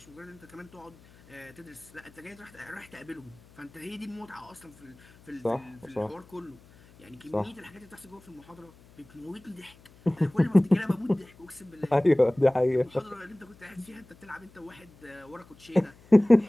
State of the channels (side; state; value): left; noise; hum, 25 dB below the sound